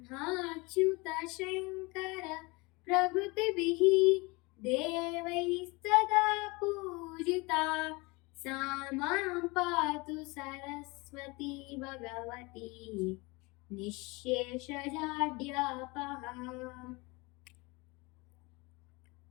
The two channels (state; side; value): quieter; right; 25.6 dB